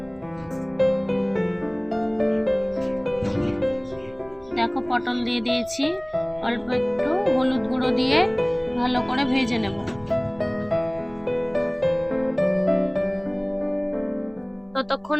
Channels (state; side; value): noise; right; hum, 30 dB below the sound